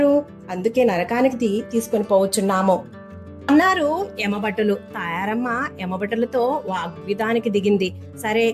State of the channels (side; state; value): both; identical; correlation 1.00